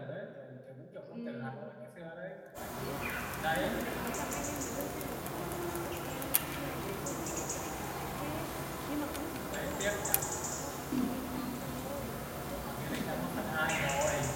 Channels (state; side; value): identical; both; correlation 1.00